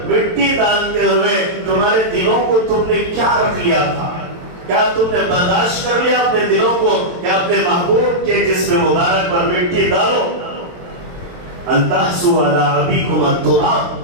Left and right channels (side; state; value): left; late; 23 ms